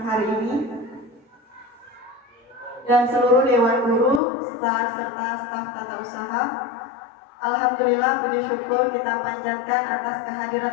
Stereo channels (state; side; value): drops out; right; at 4.2 s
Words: hari ini. Dan seluruh Dewan Guru, staf serta staf tata usaha. Alhamdulillah, puji syukur kita panjatkan atas